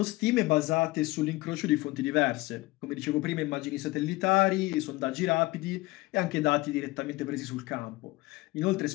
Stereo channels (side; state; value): right; quieter; 20.8 dB